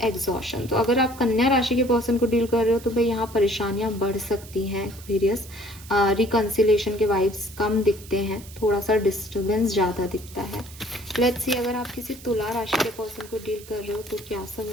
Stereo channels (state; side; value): noise; right; hiss, 19 dB below the sound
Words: एग्जॉशन। तो अगर आप कन्या राशि के पर्सन को डील कर रहे हो तो भाई यहाँ परेशानियां बढ़ सकती हैं, वेरियस रिकंसिलेशन के वाइब्स कम दिखते हैं, थोड़ा सा डिस्टर्बेंस ज़्यादा दिखता है। लेट्स सी, अगर आप किसी तुला राशि के पर्सन को डील कर रहे हो तो क्या सब